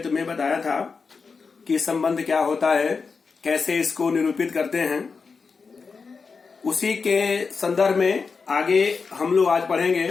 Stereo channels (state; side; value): quieter; right; 4.9 dB